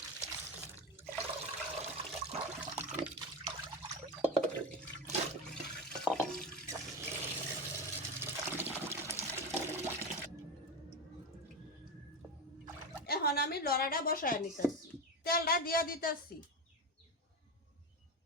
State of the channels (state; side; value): normal; both; correlation 0.18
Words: এখন আমি লড়াটা বসায় নিতেছি, তেলটা দিয়া দিতেছি।